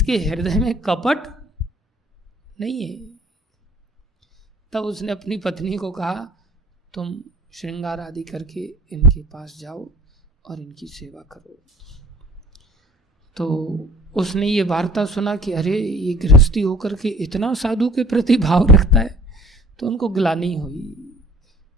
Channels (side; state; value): both; normal; correlation 0.50